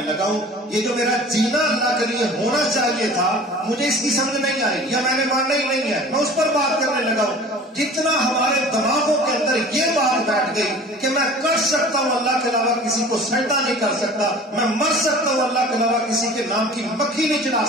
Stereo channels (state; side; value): normal; both; correlation 0.43